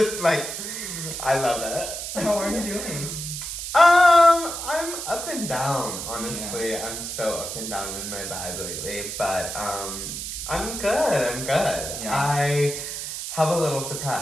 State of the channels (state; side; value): noise; right; hiss, 6 dB below the sound